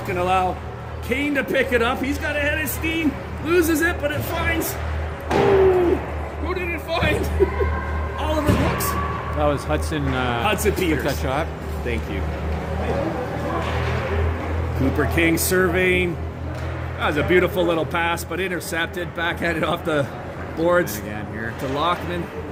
and allow Kane to pick it up. He's got ahead of steam, loses it, but it finds. Ooh, who did it find? Oliver Brooks. That was Hudson. Hudson Peters. Took that shot. Thank you. Cooper King surveying. That was a beautiful little pass, but intercepted. Backhanded off the boards And again here. to Lockman.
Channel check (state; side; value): identical; both; correlation 1.00